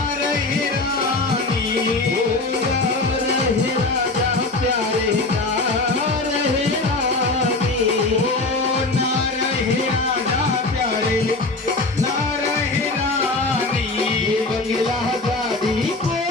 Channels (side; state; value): right; quieter; 3.2 dB